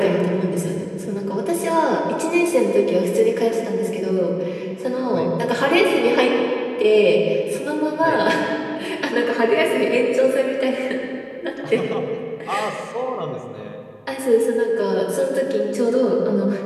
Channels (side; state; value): both; identical; correlation 1.00